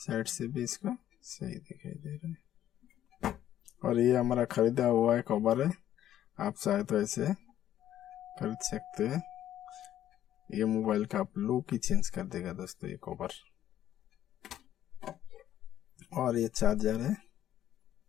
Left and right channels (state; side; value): quieter; right; 11.6 dB